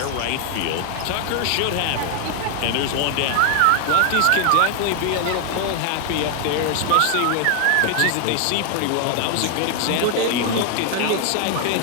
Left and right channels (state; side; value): different; both; correlation 0.00